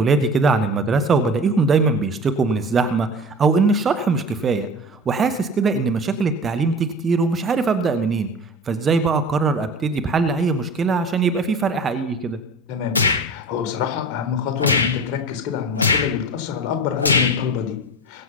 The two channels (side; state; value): both; normal; correlation 0.36